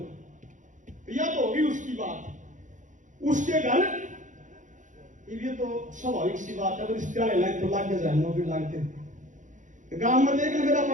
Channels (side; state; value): left; late; 0.37 ms